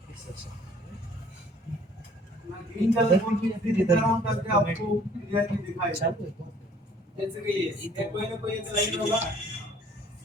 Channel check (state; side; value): normal; both; correlation 0.56